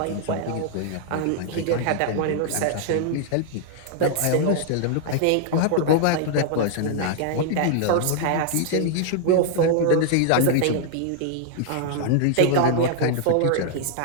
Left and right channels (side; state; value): both; different; correlation -0.01